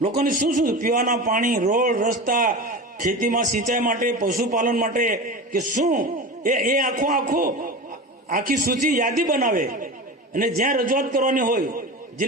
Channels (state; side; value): normal; both; correlation 0.28